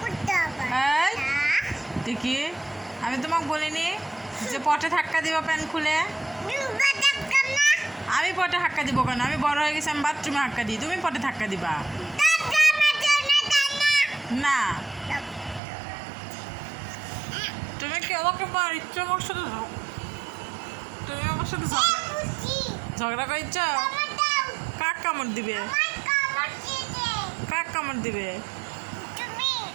এই দেখি, আমি তোমাকে বলিনি যে পটে ধাক্কা দিবা প্যান খুলে? আমি পটে ধাক্কা দিব কেন? আমি বড় হয়ে গেছি, আমি বাথরুমে ধাক্কা দিই, তুমি পটে ধাক্কা দিবা না? তুমি কি আমাকে মারিচ্ছ? আমার সাথে তুমি আমার সাথে ঝগড়া করিচ্ছ? কাক কামড় দিবে? কাক কামড় দিবে?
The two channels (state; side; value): drops out; left; at 15.6 s